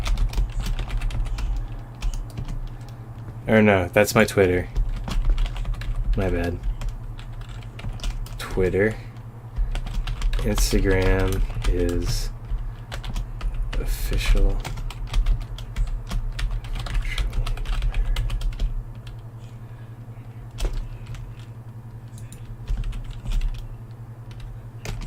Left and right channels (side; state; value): both; identical; correlation 1.00